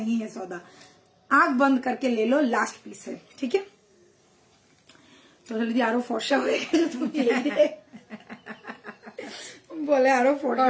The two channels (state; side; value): identical; both; correlation 1.00